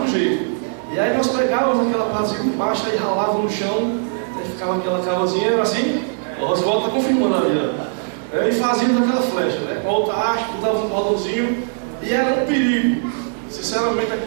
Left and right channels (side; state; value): left; silent; digital silence